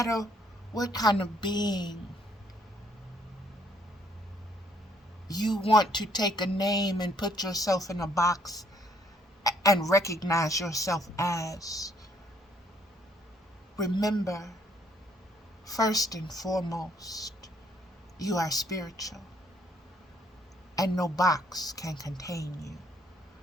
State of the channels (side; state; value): both; normal; correlation 0.66